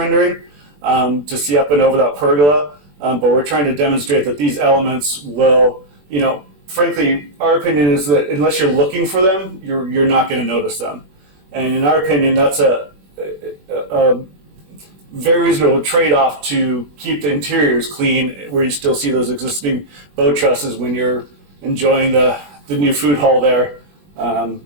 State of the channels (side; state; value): left; late; 21 ms